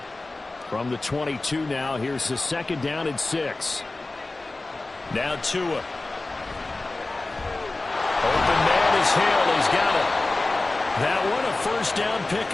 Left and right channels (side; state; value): right; quieter; 3.1 dB